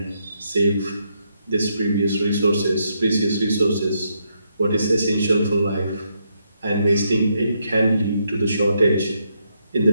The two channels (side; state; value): both; inverted; correlation -0.78